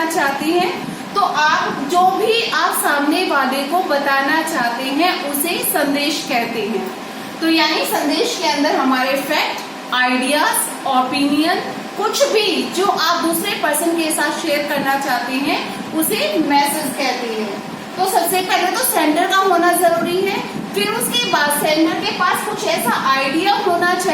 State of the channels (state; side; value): identical; both; correlation 1.00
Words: चाहते हैं, तो आप जो भी आप सामने वाले को बताना चाहते हैं उसे संदेश कहते हैं। तो यानी संदेश के अंदर हमारे फैक्ट, आइडियाज, ओपिनियन, कुछ भी जो आप दूसरे पर्सन के साथ शेयर करना चाहते हैं उसे मैसेज कहते हैं। तो सबसे पहले तो सेंडर का होना जरूरी है, फिर उसके बाद सेंडर के पास कुछ ऐसा आइडिया होना